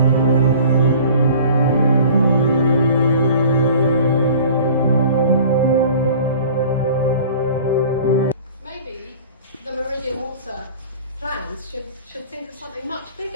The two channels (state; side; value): inverted; both; correlation -0.45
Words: Should think of something much